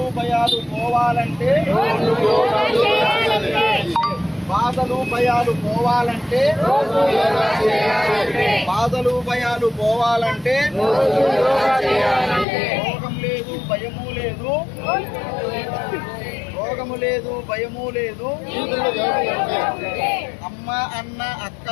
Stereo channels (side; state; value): right; drops out; at 12.5 s